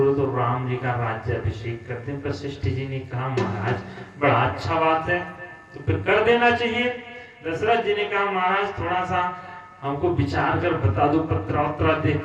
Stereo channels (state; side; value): identical; both; correlation 1.00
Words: तो राम जी का राज्याभिषेक करते हैं। वशिष्ठ जी ने कहा महाराज बड़ा अच्छा बात है, तो फिर कर देना चाहिए। दशरथ जी ने कहा महाराज थोड़ा सा हमको विचार कर बता दो, पत्रा देख